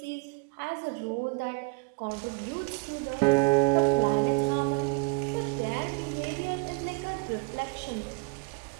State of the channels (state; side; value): quieter; left; 34.2 dB